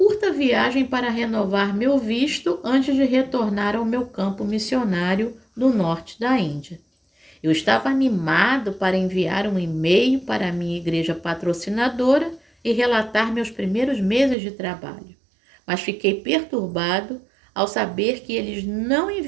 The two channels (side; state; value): left; drops out; at 14.4 s